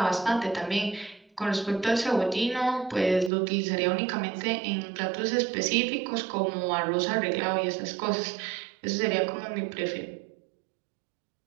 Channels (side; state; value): left; drops out; at 3.3 s